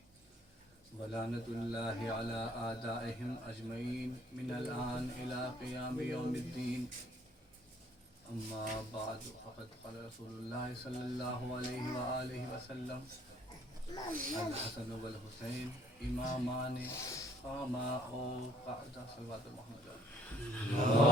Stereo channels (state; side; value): normal; both; correlation 0.61